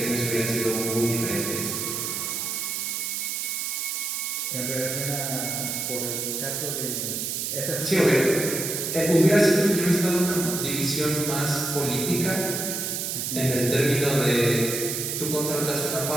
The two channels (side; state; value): right; noise; hiss, 2 dB below the sound